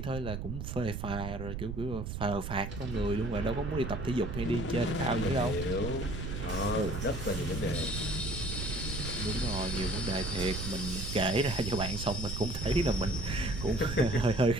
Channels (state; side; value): noise; right; rumble, 5 dB below the sound